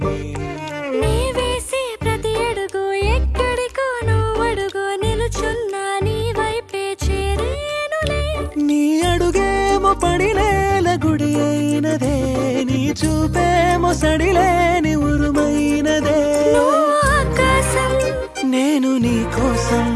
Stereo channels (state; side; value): identical; both; correlation 1.00